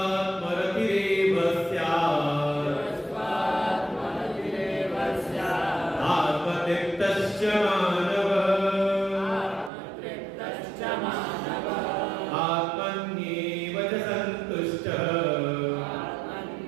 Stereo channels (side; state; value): left; drops out; at 9.7 s